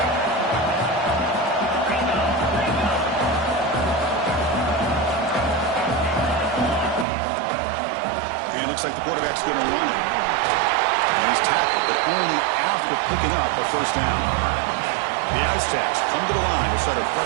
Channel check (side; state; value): left; drops out; at 7.1 s